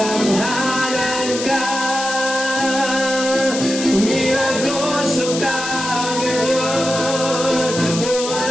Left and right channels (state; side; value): noise; left; hiss, 6 dB below the sound